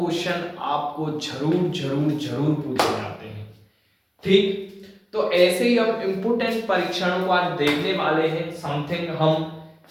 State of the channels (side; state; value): both; identical; correlation 1.00